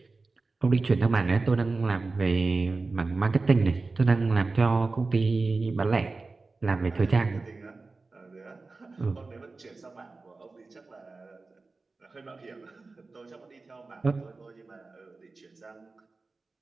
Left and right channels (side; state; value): left; quieter; 3.8 dB